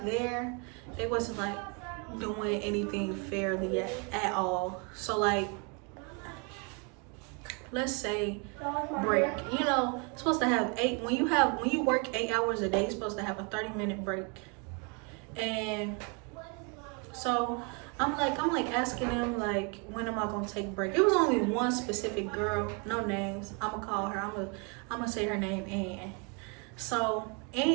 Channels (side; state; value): left; quieter; 34.1 dB